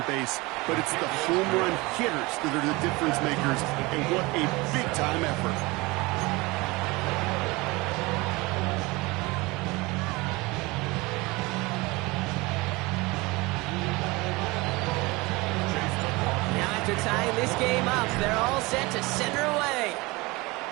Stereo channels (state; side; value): quieter; left; 23.4 dB